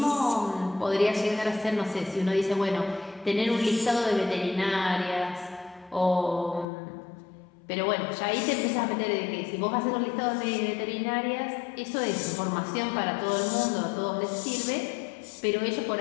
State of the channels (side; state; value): right; drops out; at 6.7 s